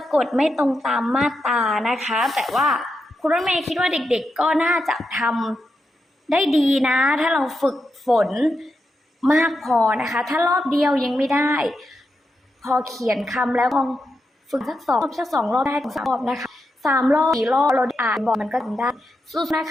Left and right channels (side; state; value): both; normal; correlation 0.86